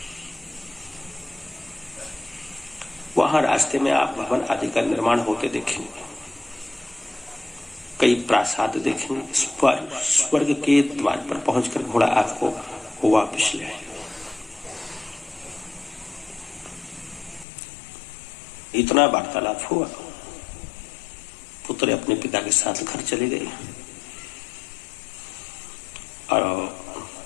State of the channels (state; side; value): drops out; right; at 17.4 s